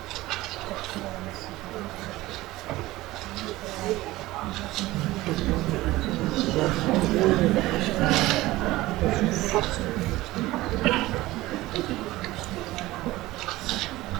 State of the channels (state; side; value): quieter; left; 18.1 dB